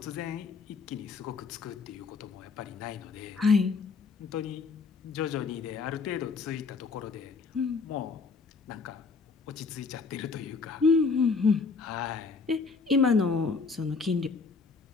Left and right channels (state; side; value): quieter; right; 4.6 dB